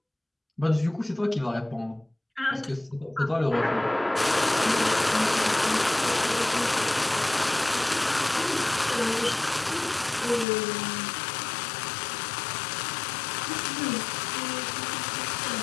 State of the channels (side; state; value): right; drops out; at 10.5 s